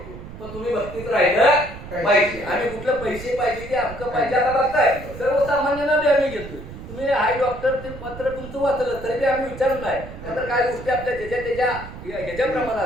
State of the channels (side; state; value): right; noise; rumble, 13 dB below the sound